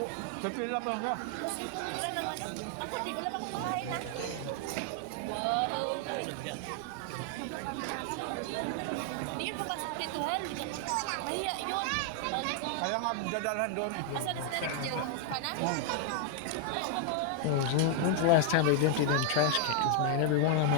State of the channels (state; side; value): different; both; correlation 0.00